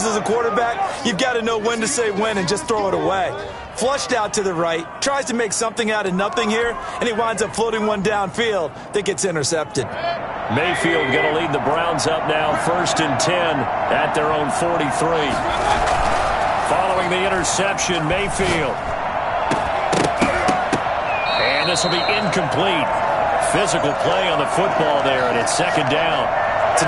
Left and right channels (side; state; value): both; identical; correlation 1.00